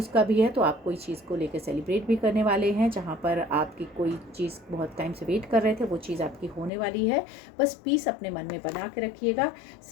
का भी है, तो आप कोई चीज़ को लेकर सेलिब्रेट भी करने वाले हैं, जहाँ पर आपकी कोई चीज़ बहुत टाइम से वेट कर रहे थे, वो चीज़ आपकी होने वाली है। बस पीस अपने मन में बना के रखिएगा।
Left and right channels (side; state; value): right; drops out; at 6.7 s